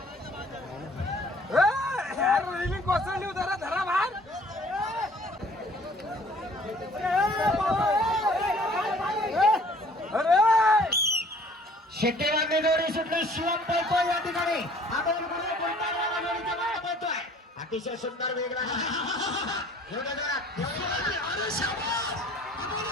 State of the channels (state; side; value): normal; both; correlation 0.54